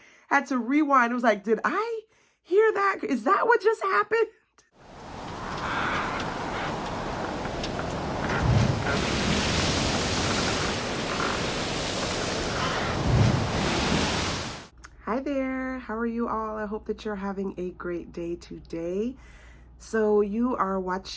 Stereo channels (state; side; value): identical; both; correlation 1.00